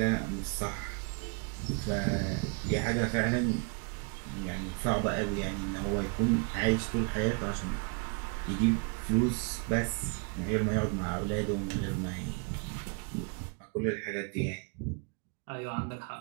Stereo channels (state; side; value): quieter; left; 36.4 dB